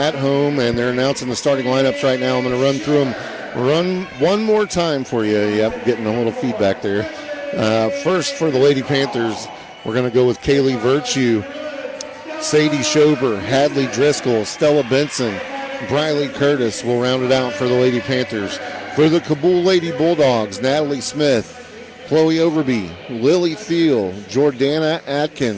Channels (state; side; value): identical; both; correlation 1.00